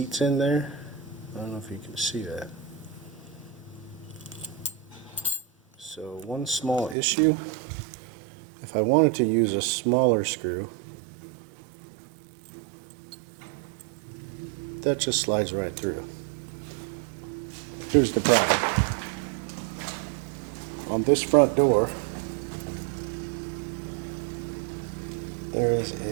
in there. I don't know if you can see that. So one small issue, if I wanted to use a smaller screw, that just slides right through. Here's the problem. On this front door, there is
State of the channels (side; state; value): left; drops out; at 7.0 s